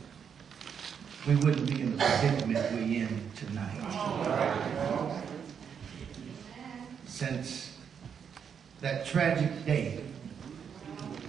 we wouldn't be in the predicament we're in tonight. Since that tragic day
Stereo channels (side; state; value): left; quieter; 7.3 dB